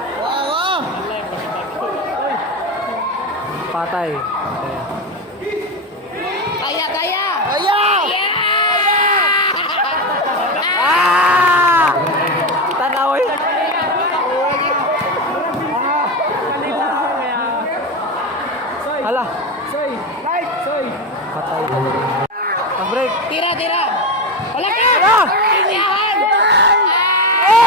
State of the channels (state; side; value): normal; both; correlation 0.16